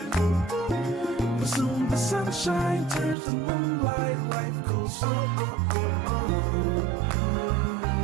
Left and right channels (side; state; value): left; drops out; at 3.2 s